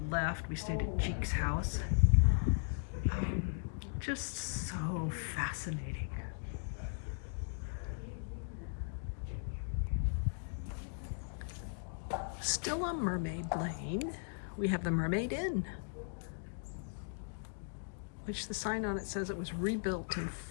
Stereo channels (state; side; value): silent; right; digital silence